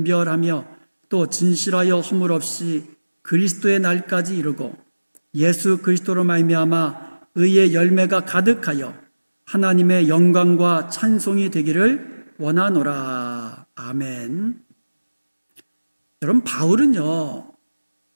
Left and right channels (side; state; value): both; inverted; correlation -1.00